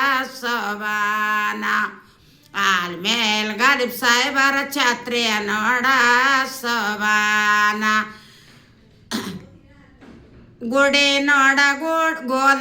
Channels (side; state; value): both; identical; correlation 1.00